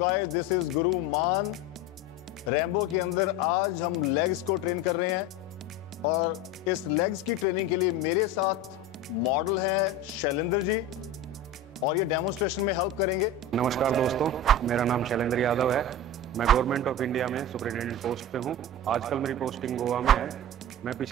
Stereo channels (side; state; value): both; normal; correlation 0.27